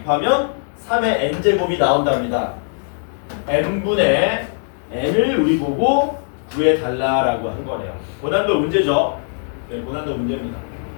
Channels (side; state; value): right; silent; digital silence